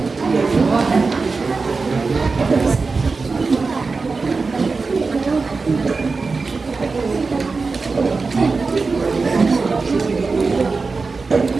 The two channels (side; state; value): left; quieter; 4.2 dB